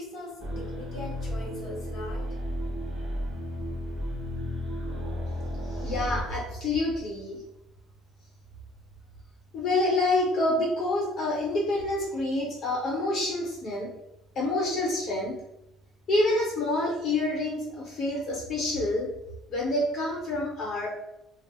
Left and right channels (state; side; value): normal; both; correlation 0.56